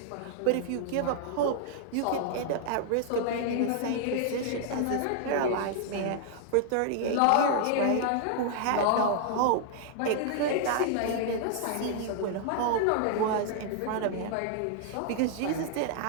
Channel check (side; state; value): both; different; correlation -0.01